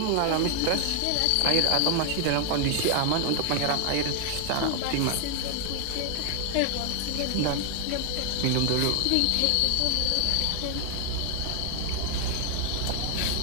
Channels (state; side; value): different; both; correlation 0.00